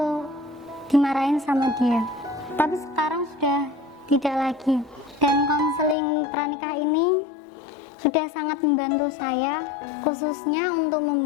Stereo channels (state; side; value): drops out; right; at 6.0 s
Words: dimarahin sama dia. Tapi sekarang sudah tidak lagi. Dan konseling pranikah ini sudah sangat membantu saya, khususnya untuk